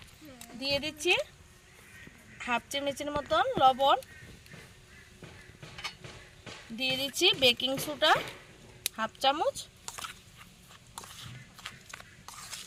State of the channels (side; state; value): both; identical; correlation 1.00